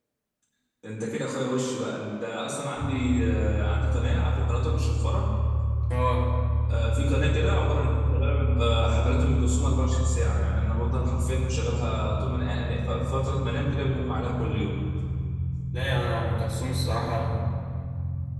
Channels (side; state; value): both; identical; correlation 1.00